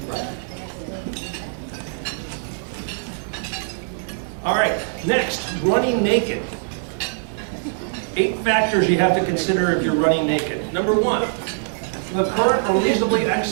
Right. All right, next, running naked. 8 factors you have to consider if you're running naked. Number 1, the current or reasonably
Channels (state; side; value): silent; left; digital silence